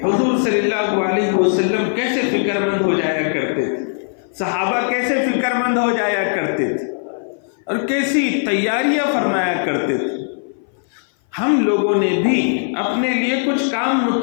حضور صلی اللہ علیہ وسلم کیسے فکر مند ہو جایا کرتے تھے، صحابہ کیسے فکر مند ہو جایا کرتے تھے اور کیسی تیاریاں فرمایا کرتے تھے۔ ہم لوگوں نے بھی اپنے لیے کچھ کام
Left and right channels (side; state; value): right; silent; 59 dB below the other